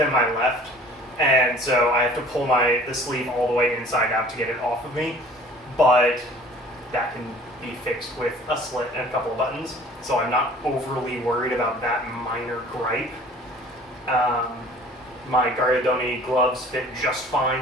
my left, and so I have to pull the sleeve all the way inside out to get it off of me, but that can be fixed with a slit and a couple of buttons, so I'm not overly worried about that minor gripe. My Gariadoni gloves fit just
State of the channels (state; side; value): normal; both; correlation 0.49